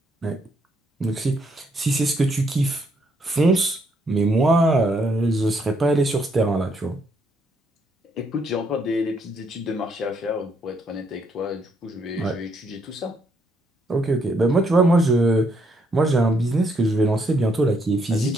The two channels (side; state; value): both; normal; correlation 0.73